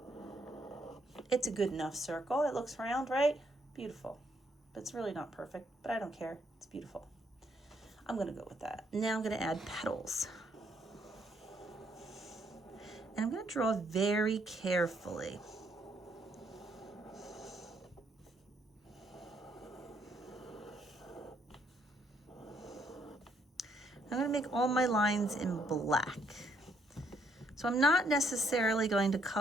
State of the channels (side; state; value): both; normal; correlation 0.71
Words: It's a good enough circle. It looks round, right? Beautiful. But it's really not perfect, but I don't care. It's beautiful. I'm going to go with that. Now I'm going to add petals. And I'm going to draw very carefully. I'm going to make all my lines in black. So I'm not necessarily going to